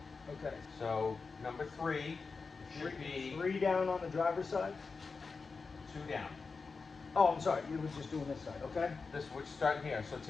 Okay. So number 3 should be 3 down on the driver's side? 2 down. Oh, I'm sorry. You were just doing this side, okay? We're starting here. So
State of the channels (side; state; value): right; quieter; 4.6 dB